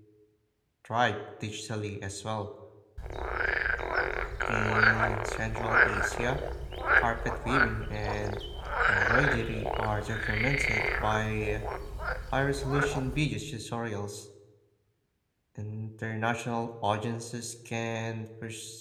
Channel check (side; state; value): both; identical; correlation 1.00